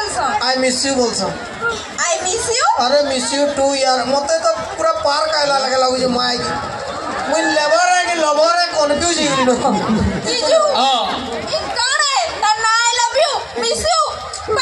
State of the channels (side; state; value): both; identical; correlation 1.00